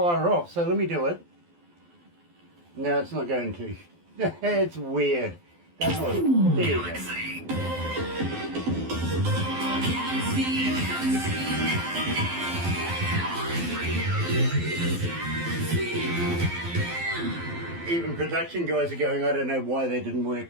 off, so let me do it. No, it's not going to. It's weird. That's what, there you go. Even production guys are going, I don't know why they didn't work,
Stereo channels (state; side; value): late; left; 12 ms